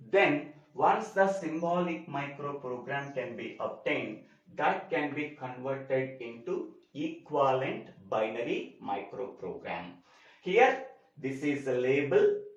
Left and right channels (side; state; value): both; identical; correlation 1.00